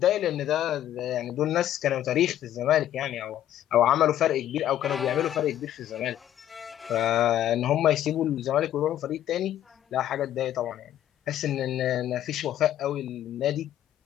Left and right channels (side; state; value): right; quieter; 11.8 dB